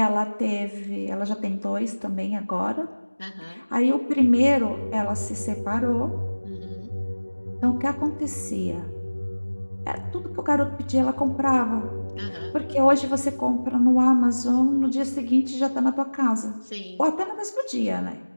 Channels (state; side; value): inverted; both; correlation -1.00